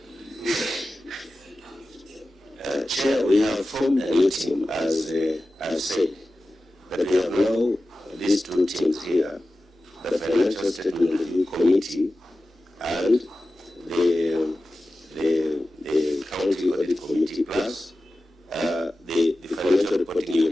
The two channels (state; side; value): normal; both; correlation 0.94